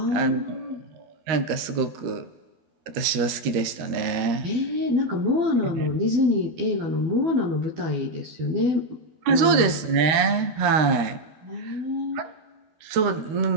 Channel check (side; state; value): left; late; 13 ms